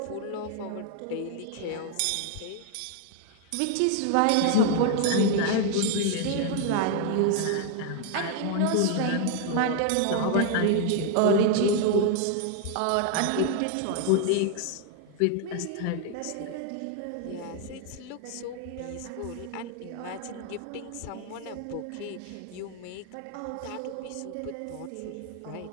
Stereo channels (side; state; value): both; different; correlation 0.00